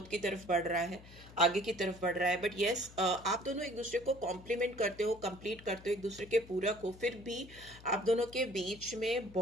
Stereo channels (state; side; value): noise; left; hum, 19 dB below the sound